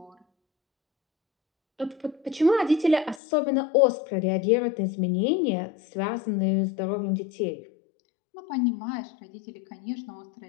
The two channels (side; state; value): right; drops out; at 3.2 s